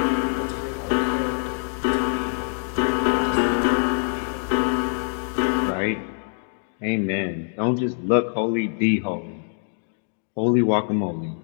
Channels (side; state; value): right; silent; 55 dB below the other